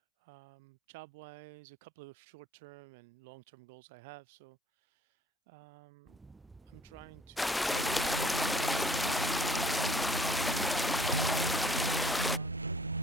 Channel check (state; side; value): normal; both; correlation 0.55